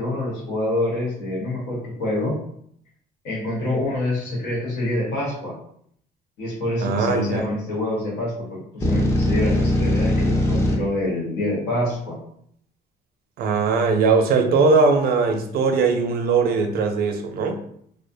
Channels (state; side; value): normal; both; correlation 0.44